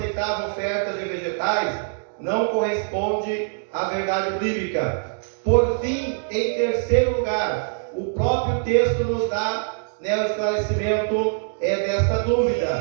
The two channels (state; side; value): silent; left; digital silence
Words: ofertas de vegetais não corresponde à verdade bíblica. Por fim, em terceiro lugar, o próprio texto nos dá o esclarecimento desta